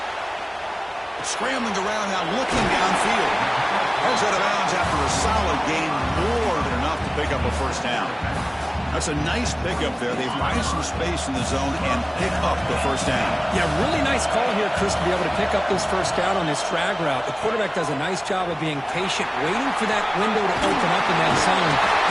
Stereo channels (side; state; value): both; identical; correlation 1.00